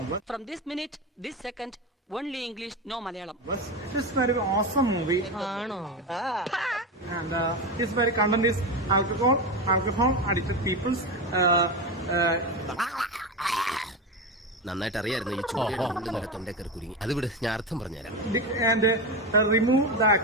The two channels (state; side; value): normal; both; correlation 0.18